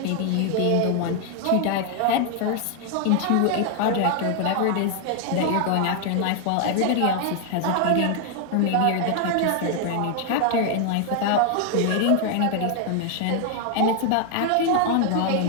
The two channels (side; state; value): both; different; correlation 0.00